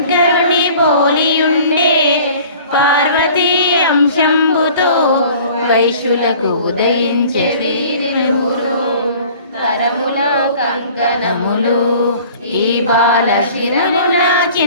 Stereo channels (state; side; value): inverted; both; correlation -0.48